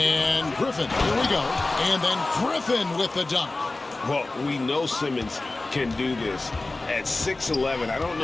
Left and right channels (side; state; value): right; quieter; 3.1 dB